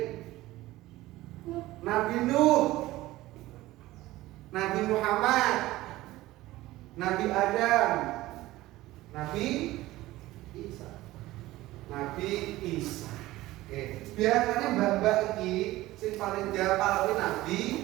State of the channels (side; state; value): left; quieter; 17.3 dB